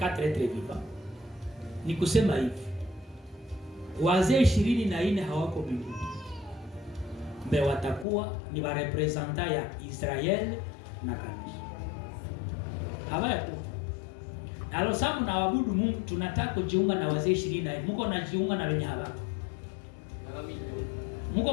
êtres vivants. Ni kusema hivi, wazee 24 hawako mbinguni. Mbe watakuwa ni wa representa ya Israel na kanisa. Hawako. Alo samu na wabudu Mungu, tunataka kujiunga na wazee 24. Mungu anajiunga na wenye hawako. Mungu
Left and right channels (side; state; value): right; drops out; at 8.1 s